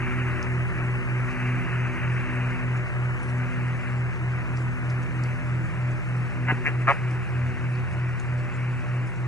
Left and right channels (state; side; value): normal; both; correlation 0.53